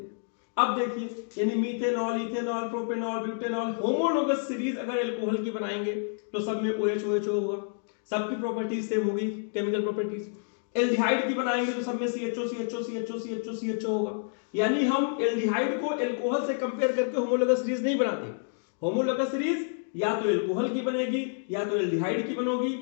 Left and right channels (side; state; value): right; silent; digital silence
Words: अब देखिए, यानी methanol, ethanol, propanol, butanol, homologous series अगर अल्कोहल की बनाएंगे तो सब में OH OH होगा, सबकी प्रॉपर्टीज सेम होगी, केमिकल प्रॉपर्टीज। एल्डिहाइड की बनाएंगे तो सब में CHO CHO CHO CHO CHO होगा। यानी हम एल्डिहाइड को अल्कोहल से कंपेयर करके होमोलोगस सीरीज नहीं बनाते। होमोलोगस सीरीज या तो अल्कोहल की बनेगी, या तो एल्डिहाइड की